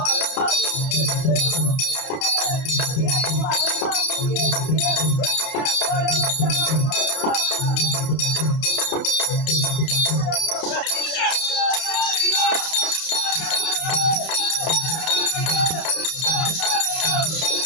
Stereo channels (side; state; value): right; late; 31 ms